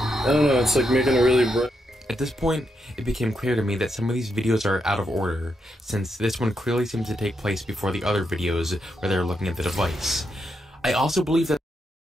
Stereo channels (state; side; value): normal; both; correlation 0.82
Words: I don't know, it's like making a really bright... At this point, it became clear to me that some of these videos are out of order, since this one clearly seems to take place before the other videos where they're looking at the device. I also believe that